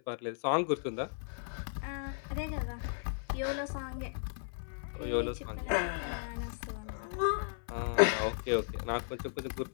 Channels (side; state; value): right; silent; 54 dB below the other